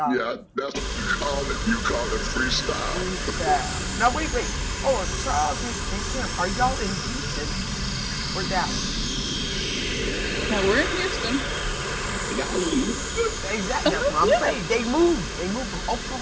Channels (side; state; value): both; identical; correlation 1.00